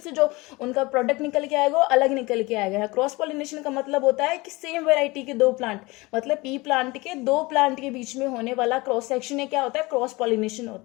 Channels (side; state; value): right; quieter; 23.0 dB